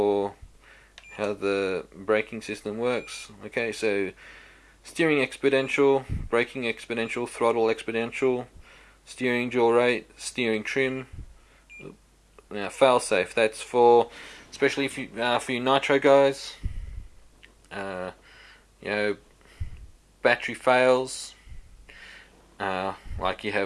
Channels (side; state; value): both; identical; correlation 1.00